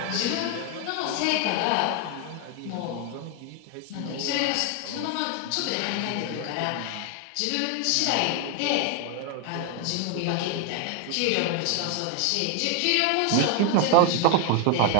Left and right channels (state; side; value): different; both; correlation 0.00